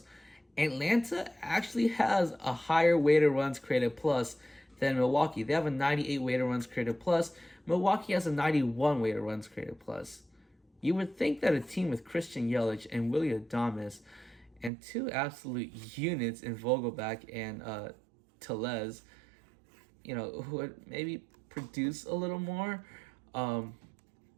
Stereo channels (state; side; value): drops out; left; at 14.7 s